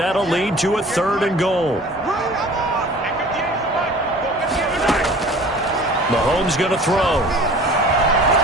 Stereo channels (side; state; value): both; normal; correlation 0.45